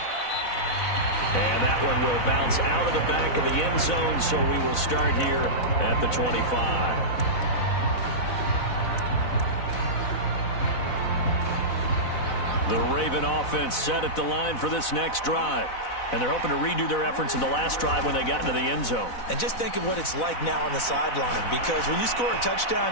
And that one will bounce out of the back of the end zone, so we will start here at the 25. The Raven offense set at the line for this next drive. And they're hoping to redo their efforts in the last drive when they got into the end zone. And just think of what it's like now on the sideline, because when you score a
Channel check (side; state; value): right; late; 4.0 ms